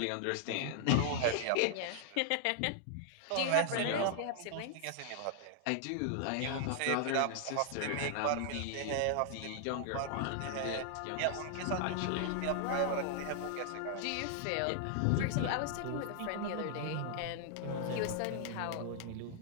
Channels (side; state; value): both; different; correlation 0.00